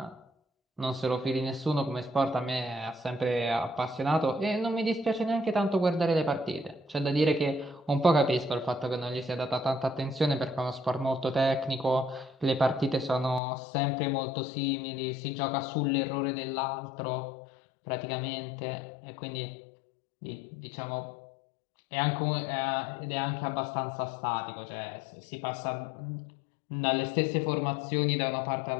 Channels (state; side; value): drops out; right; at 13.4 s